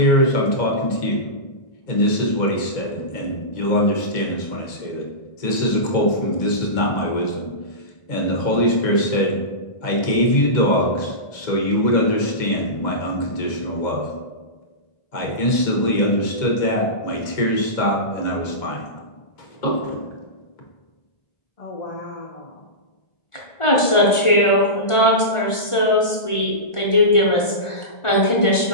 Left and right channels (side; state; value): right; late; 1.4 ms